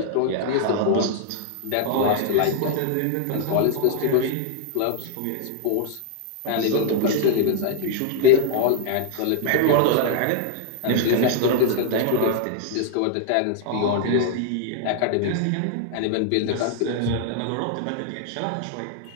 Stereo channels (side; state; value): both; different; correlation 0.00